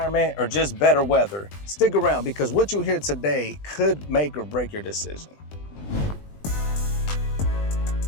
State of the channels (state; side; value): late; right; 20 ms